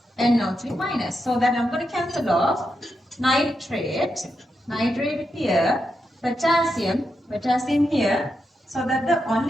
NO3 minus. So that I'm going to cancel off nitrate here, potassium here. So that the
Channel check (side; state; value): both; normal; correlation 0.85